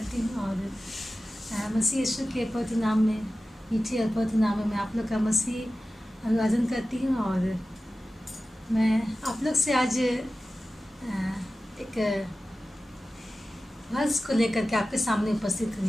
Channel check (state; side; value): normal; both; correlation 0.94